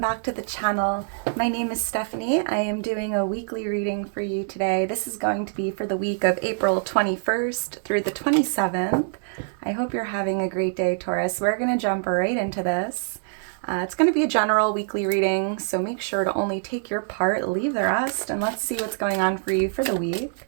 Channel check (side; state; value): left; silent; 61 dB below the other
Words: to the channel. My name is Stephanie. I am doing a weekly reading for you today. This is going to be for the week of April 21st through the 27th. I hope you're having a great day, Taurus. We're going to jump right into this. It's going to be a general weekly reading, so make sure to only take your part, leave the rest, and let's see what's going on for you for the week.